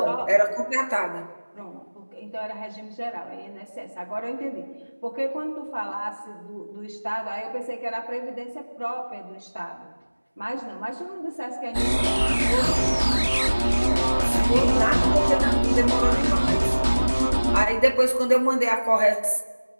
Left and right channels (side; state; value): both; inverted; correlation -1.00